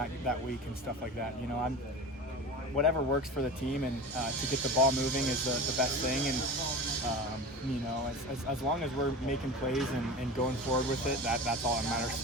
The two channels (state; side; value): normal; both; correlation 0.32